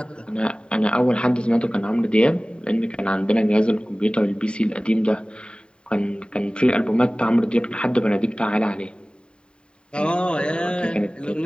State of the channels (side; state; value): right; late; 0.051 ms